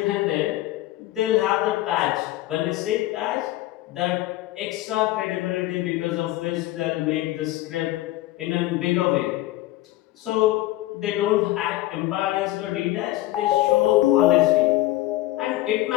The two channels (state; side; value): quieter; right; 16.1 dB